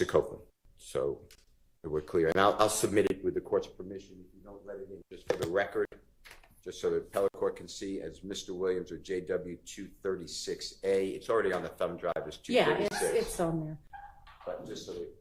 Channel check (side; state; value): both; identical; correlation 1.00